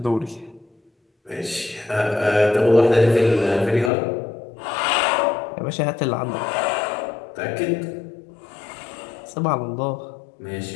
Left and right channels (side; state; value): right; drops out; at 3.9 s